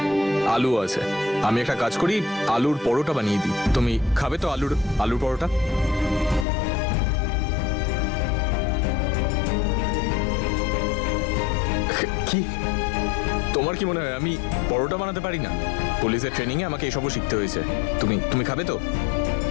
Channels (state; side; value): drops out; right; at 6.5 s